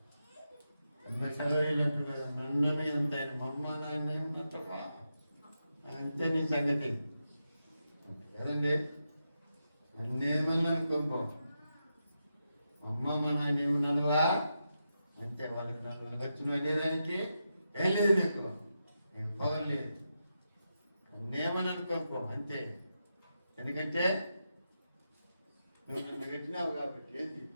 చదవలేనట్టు కదా. నన్ను ఎంత ఆయన మమ్మ నాన్న ఉన్నట్టవా అంతే నీ సంగతి కదండి. నన్నేమన్నా అనుకోంపో, అమ్మ మా నాయన ఏమన్నానువా అంతే. వాళ్ళకి నన్ను వచ్చిన వెళ్ళేదానికి ఏం లేదు, నీకు పవర్ లేదు. నన్నేమని అనుకోనుకో అంతే. ఎందుకంటే నువ్వు నన్ను పెట్టినావు కాబట్టి. ఏంటి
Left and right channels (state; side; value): inverted; both; correlation -0.87